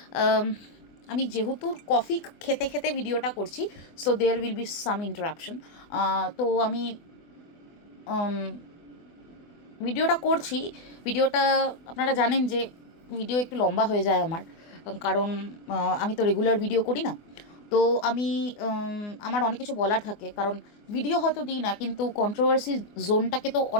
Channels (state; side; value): late; right; 24 ms